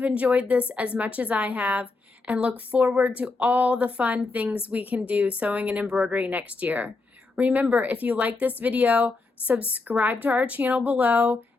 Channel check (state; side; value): quieter; right; 3.7 dB